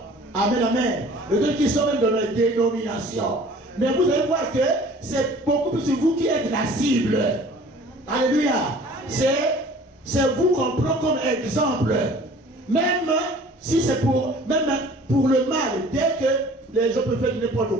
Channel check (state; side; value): normal; both; correlation 0.49